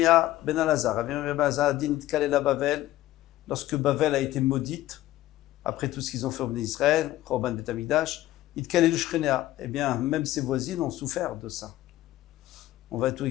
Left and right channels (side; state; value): right; quieter; 15.2 dB